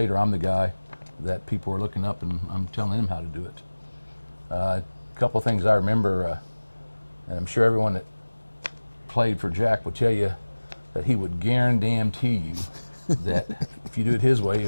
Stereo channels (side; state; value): both; inverted; correlation -1.00